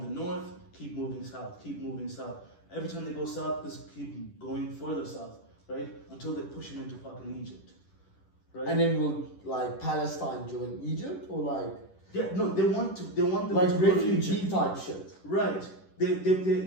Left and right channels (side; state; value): right; late; 10 ms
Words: the north, keep moving south, keep moving south. Every time they go south, just keep going further south, right? Until they push them into fucking Egypt, right? And then will like Palestine join Egypt or like Yeah, no, they want them like to go to refugee Egypt. type shit? Right. They